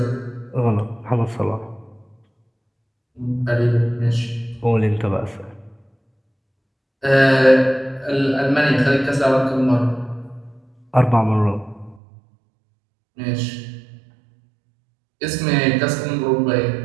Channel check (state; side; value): drops out; left; at 12.0 s